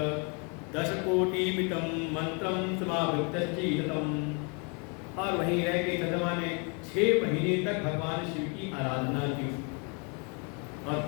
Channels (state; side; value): quieter; right; 35.0 dB